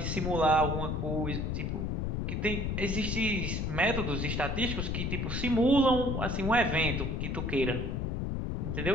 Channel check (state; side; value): noise; left; rumble, 1 dB below the sound